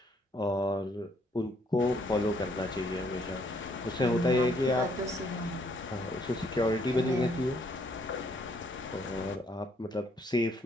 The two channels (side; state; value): both; normal; correlation 0.68